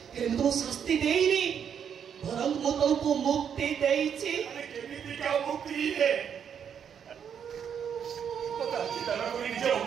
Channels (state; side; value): quieter; left; 8.0 dB